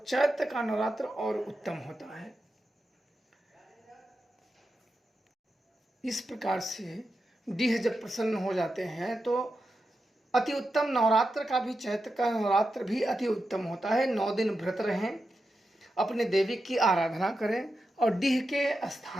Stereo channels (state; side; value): normal; both; correlation 0.89